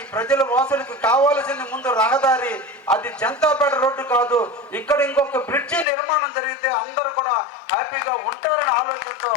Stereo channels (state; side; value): drops out; right; at 5.9 s